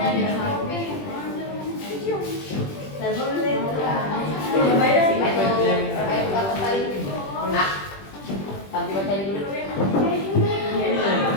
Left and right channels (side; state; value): right; late; 20 ms